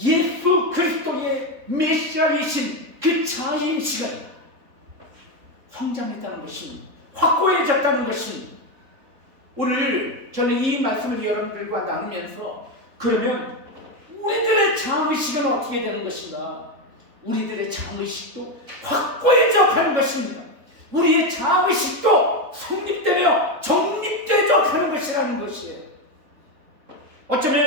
그리스도의 메시아이신 그 자아인 시간 성장했다는 것입니다. 확고해졌다는 것입니다. 오늘 저는 이 말씀을 여러분들과 나누면서 그러면 우리들의 자아의식은 어떻게 되는 것인가? 우리들의 자아의식도 확고해져 가는 것입니다. 우리의 자아의식도 성립되며 정립되져 가는 것이라는 것이에요.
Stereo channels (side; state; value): left; late; 3.7 ms